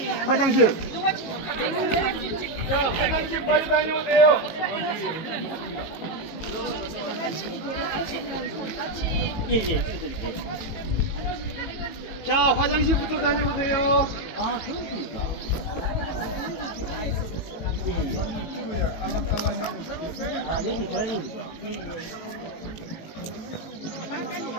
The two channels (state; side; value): late; right; 18 ms